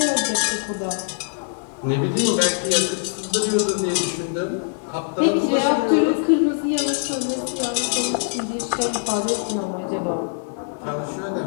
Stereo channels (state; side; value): silent; right; digital silence